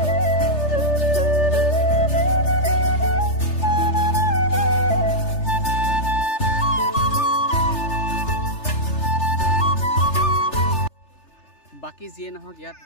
বাকী যিয়ে নহওক ইয়াত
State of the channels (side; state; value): right; late; 3.3 ms